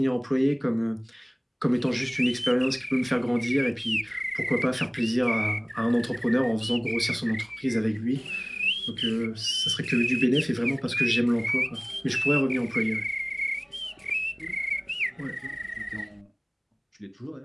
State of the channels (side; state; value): both; identical; correlation 1.00